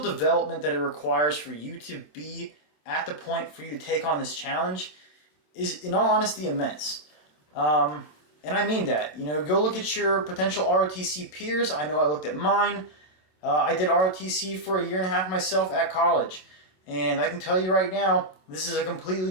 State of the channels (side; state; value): right; late; 26 ms